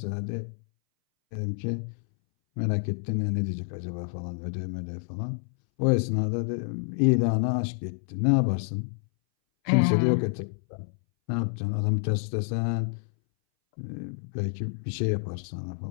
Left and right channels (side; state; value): right; silent; 59 dB below the other